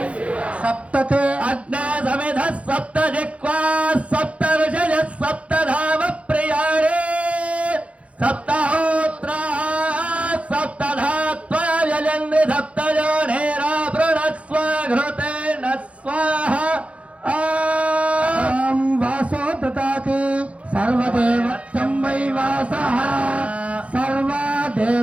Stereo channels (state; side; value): late; left; 0.063 ms